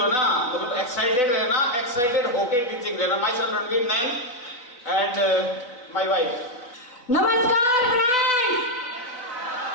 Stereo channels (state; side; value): late; right; 4.0 ms